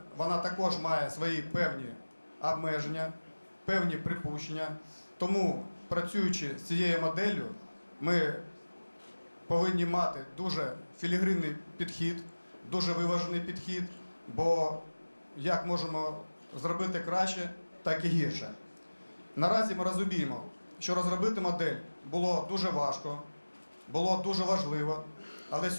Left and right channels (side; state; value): both; inverted; correlation -1.00